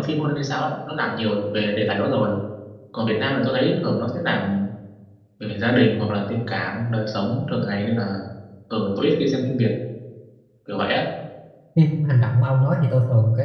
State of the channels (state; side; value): identical; both; correlation 1.00